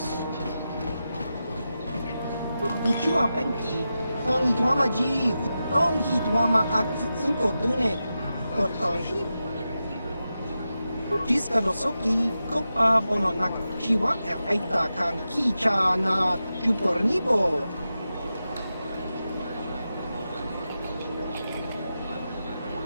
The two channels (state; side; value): inverted; both; correlation -0.91